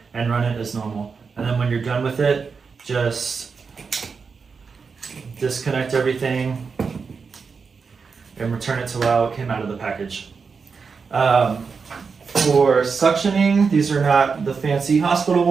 and run it as normal. And then when you're done with it, just disconnect everything and return it to how it came out of the package. For suctioning, these are not the fancy hospital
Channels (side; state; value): left; quieter; 5.3 dB